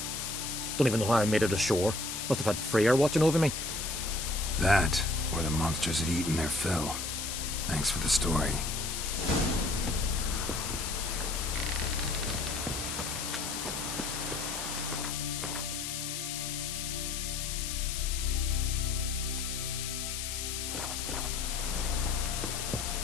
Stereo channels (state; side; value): noise; left; hiss, 4 dB below the sound